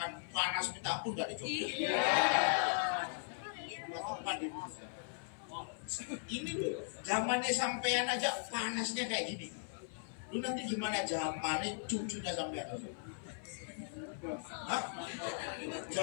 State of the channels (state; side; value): silent; right; 52 dB below the other